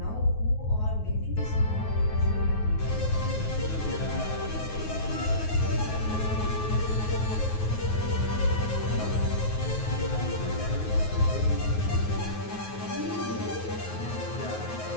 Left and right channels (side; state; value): right; late; 9.4 ms